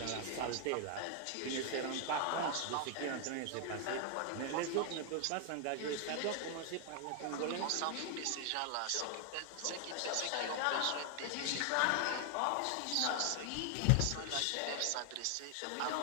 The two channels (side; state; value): both; different; correlation 0.00